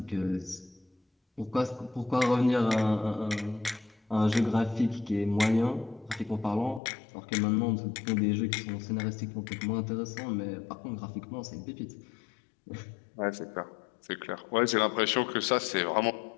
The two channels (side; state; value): right; drops out; at 6.8 s